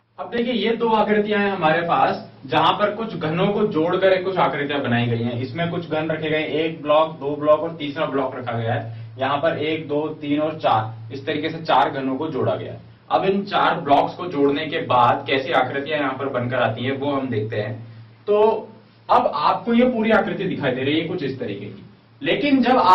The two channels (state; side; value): identical; both; correlation 1.00